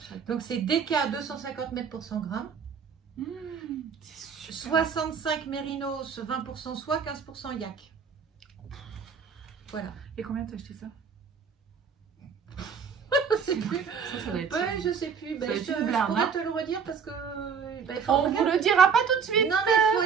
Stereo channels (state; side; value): quieter; left; 6.3 dB